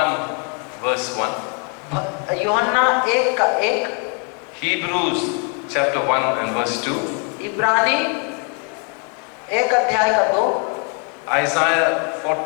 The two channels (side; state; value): right; quieter; 38.6 dB